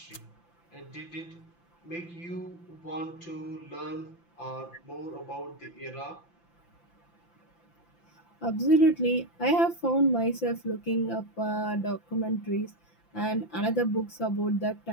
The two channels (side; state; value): right; late; 5.9 ms